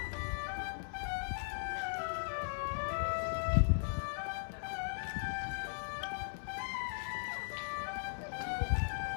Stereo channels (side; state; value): right; silent; 52 dB below the other